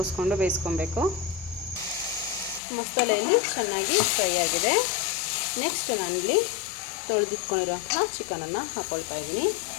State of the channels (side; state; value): right; drops out; at 2.6 s